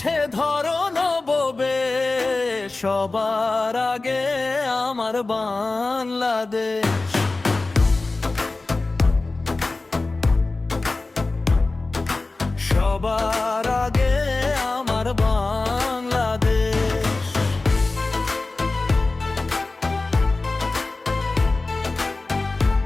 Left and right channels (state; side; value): quieter; right; 3.4 dB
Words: ধরো নববে, সবার আগে আমার বাংলাদেশ। সবার আগে আমার বাংলাদেশ।